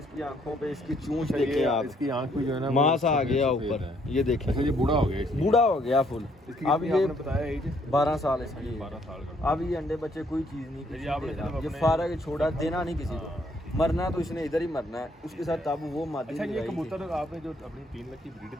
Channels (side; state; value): both; normal; correlation 0.68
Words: आंखों पे इसकी चूंच अच्छा, देखें ये आप, इसकी आंख पे जो है ना मांस वो आ गया सफेद ऊपर। है। ये देखें, अच्छा, ये बूढ़ा हो गया इसलिए? बूढ़ा हो गया फुल। इसकी अब कितनी ये आपने बताया एज? 12 साल इसकी। 12 साल का। अब ये अंडे बच्चे कोई चीज़ नहीं किसी ये आपने दे रहा। सिर्फ ये अपने- फारग छोड़ा, देना नहीं किसी को। हाँ, मरना तो इसने इधर ही मरना है। उसके साथ तब वो मादी अच्छा, ये लगाई थी। कबूतर आपने जो अपनी 3 लाख की